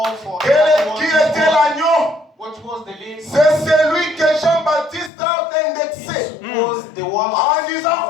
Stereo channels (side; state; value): right; drops out; at 5.1 s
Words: for Qui everyone. était l'agneau? What was the lamb? C'est celui que Jean-Baptiste a indexé. Was the one En disant,